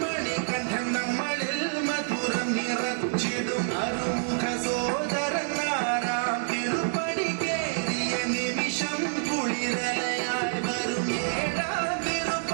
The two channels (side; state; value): left; silent; 60 dB below the other